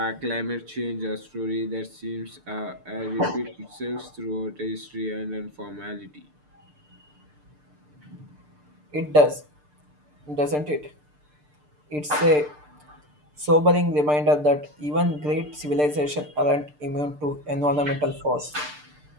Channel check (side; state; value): left; late; 6.7 ms